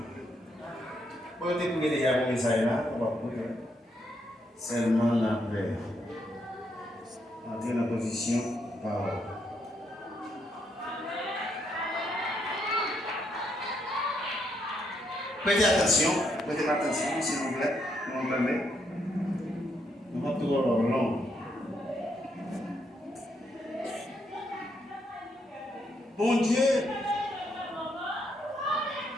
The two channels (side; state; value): both; normal; correlation 0.77